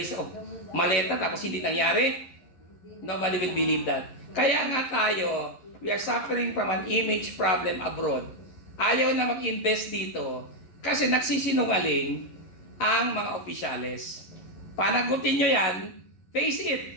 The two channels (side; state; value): right; late; 11 ms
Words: of maleta tapos hindi nangyari. Nobody will believe that. Kaya nga tayo, we are suffering from an image problem abroad. Ayaw na mag-invest dito kasi nagsisinungaling ang mga opisyales. Panagutin nyo yan, face it.